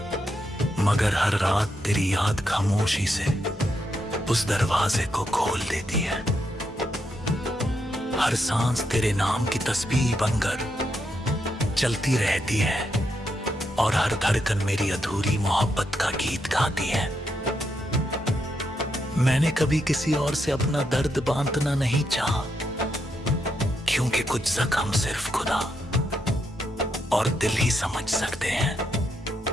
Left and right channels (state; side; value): normal; both; correlation 0.81